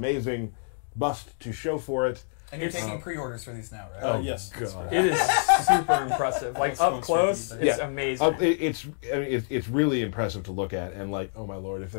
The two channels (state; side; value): silent; right; digital silence